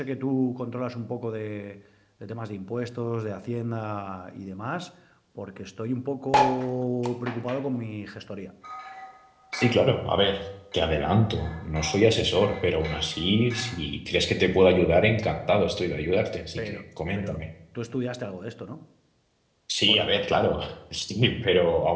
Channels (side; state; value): both; identical; correlation 1.00